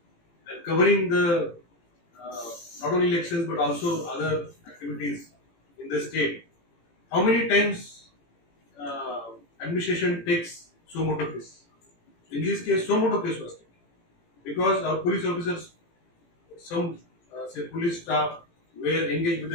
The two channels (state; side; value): late; right; 18 ms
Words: and covering the not only elections but also other activities in the state. How many times administration takes suo moto case? In this case, suo moto case was taken because our police officers, some say police staff, were engaged with